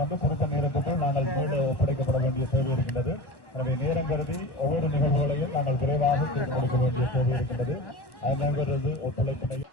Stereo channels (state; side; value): late; right; 1.1 ms